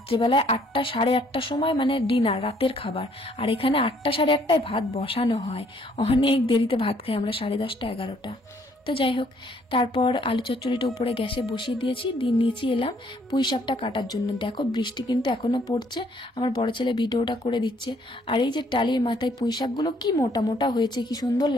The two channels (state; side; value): normal; both; correlation 0.65